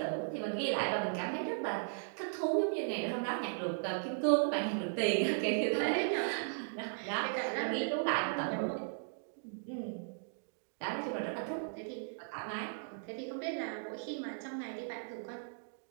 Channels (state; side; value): silent; left; digital silence